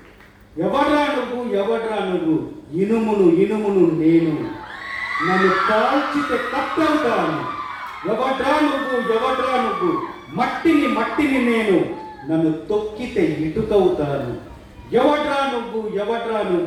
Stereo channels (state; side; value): identical; both; correlation 1.00